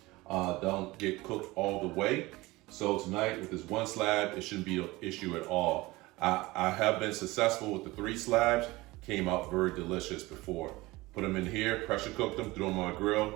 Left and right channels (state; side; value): quieter; left; 20.7 dB